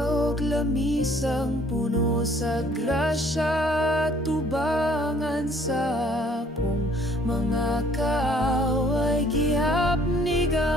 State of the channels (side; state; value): both; normal; correlation 0.59